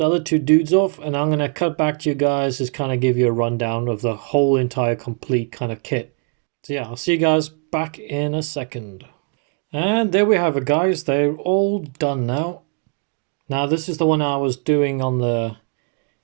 other two dudes off, and I'm going to cut back to you guys, just kind of give you a rundown of the whole entire complete kind of kit. So yeah, I'll see you guys back in a second. And there we have it, guys. They're all done now. Now this is the one I was doing on the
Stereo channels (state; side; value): quieter; left; 39.9 dB